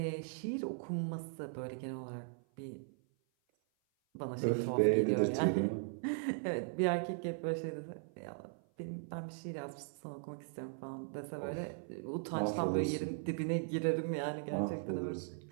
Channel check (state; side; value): silent; left; 52 dB below the other